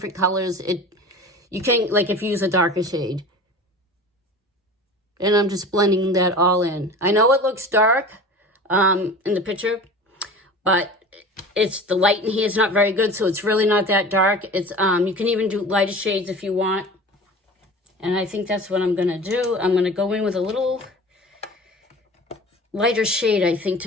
colors, you can, like if you use a darker shade. And I'm just blending that all in. I know it looks dark in the picture, but the light in here is not very good, so it's really not that dark. You can even do lighter shades if you want. And I think that's what I'm going to do. I'm going to go in with a little lighter shade, I think,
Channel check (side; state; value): both; normal; correlation 0.38